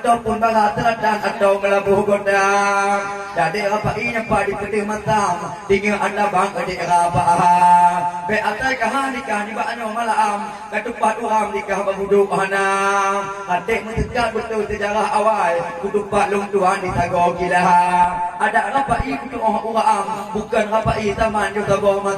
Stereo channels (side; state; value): both; identical; correlation 1.00